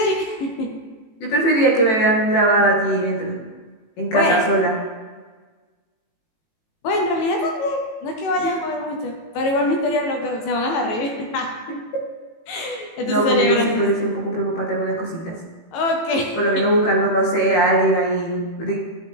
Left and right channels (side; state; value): right; late; 18 ms